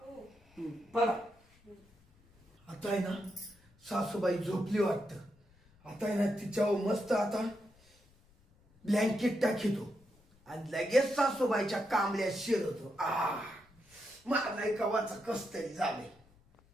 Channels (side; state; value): left; noise; rumble, 30 dB below the sound